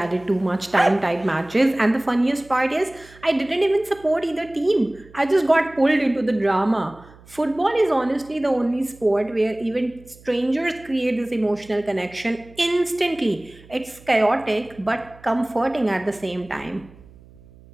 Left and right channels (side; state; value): right; noise; hum, 24 dB below the sound